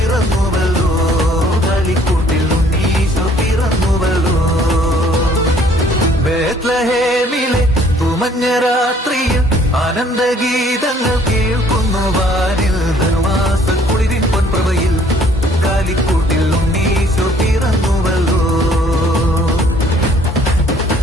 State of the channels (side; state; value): both; normal; correlation 0.60